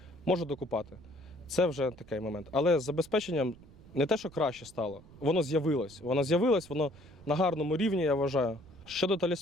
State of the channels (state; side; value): noise; right; rumble, 22 dB below the sound